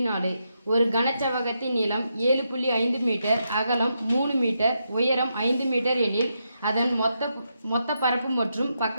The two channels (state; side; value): inverted; both; correlation -0.83